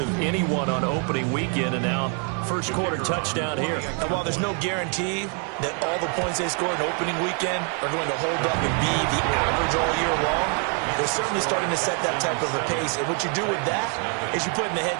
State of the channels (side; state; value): left; quieter; 39.7 dB